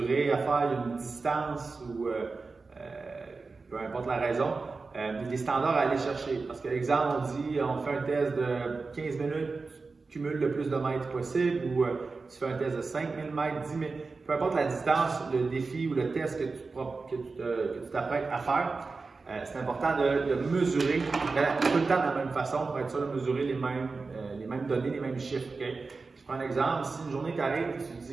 à faire, il y a une distance ou peu importe la raison, des standards à aller chercher. Parce que l'exemple, on dit on fait un test de 15 minutes, tu cumules le plus de mètres possible ou tu fais un test de 5000 mètres, 10 000, peu importe la distance, le défi ou le test que tu t'apprêtes à faire. C'est important de mesurer tout le temps de la même façon pour être sûr de mesurer les mêmes données, les mêmes chiffres. Okay? Je prends un exemple, si une journée t'arrive et tu te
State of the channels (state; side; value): quieter; left; 4.1 dB